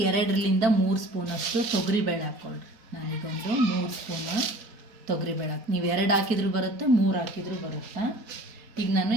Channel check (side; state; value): left; late; 4.7 ms